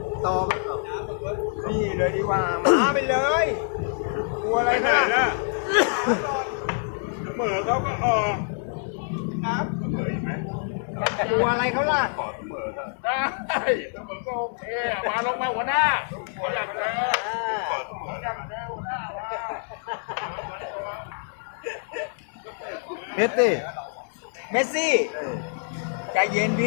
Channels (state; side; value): silent; right; 61 dB below the other